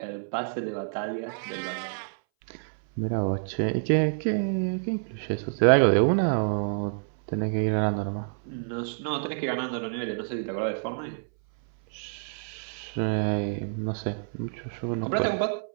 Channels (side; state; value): left; silent; 59 dB below the other